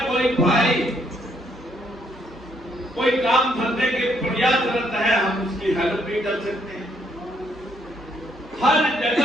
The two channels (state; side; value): normal; both; correlation 0.71